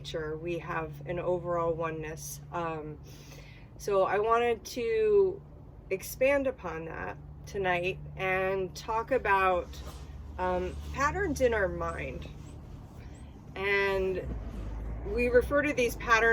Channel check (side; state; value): both; identical; correlation 1.00